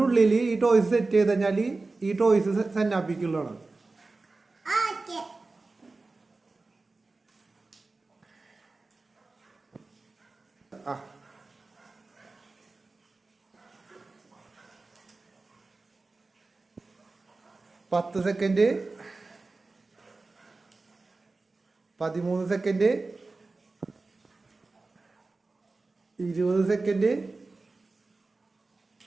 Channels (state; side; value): quieter; left; 3.5 dB